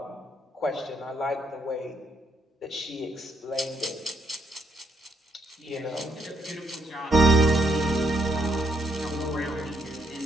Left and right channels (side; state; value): both; normal; correlation 0.75